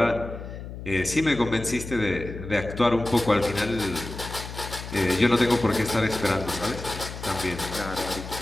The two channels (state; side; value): noise; left; hum, 10 dB below the sound